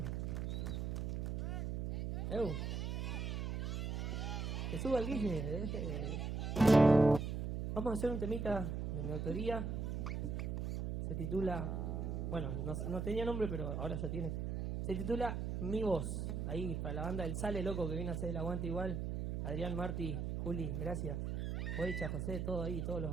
Que suba el Guille. Vamos a hacer un temita de mi autoría. Se titula... Bueno, no tenía nombre, pero ahora ya tiene. Se titula Mi Voz. Ahí, para la banda del Sale Loco que viene a hacer el aguante igual. Adrián, Marti, Juli, gracias. Oicha, José, todo ahí, todos los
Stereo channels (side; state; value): right; noise; hum, 2 dB below the sound